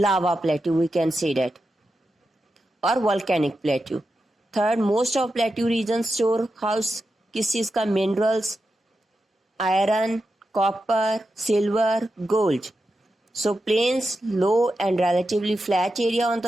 plateau, we can say that, or volcanic plateau. Third, most of plateau regions store house किस चीज का? minerals, iron, copper, silver, gold. So plains, low and relatively flat area on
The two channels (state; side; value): normal; both; correlation 0.89